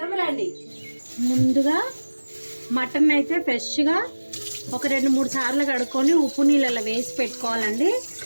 రండి. ముందుగా మటన్ అయితే ఫ్రెష్గా ఒక 2-3 సార్లు కడుక్కొని ఉప్పు నీళ్ళలో వేసి పెట్టుకోవాలండి.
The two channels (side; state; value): both; inverted; correlation -1.00